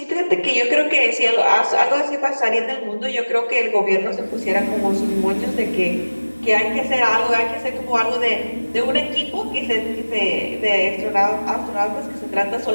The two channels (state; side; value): inverted; both; correlation -1.00